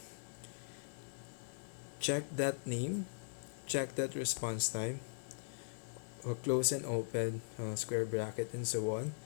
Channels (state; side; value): silent; right; digital silence